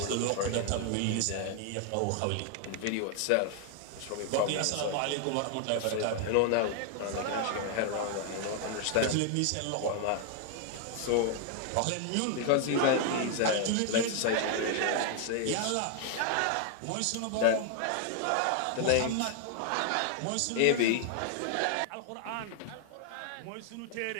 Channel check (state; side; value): different; both; correlation 0.00